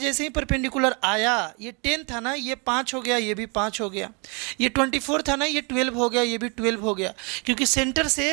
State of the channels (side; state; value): left; quieter; 32.8 dB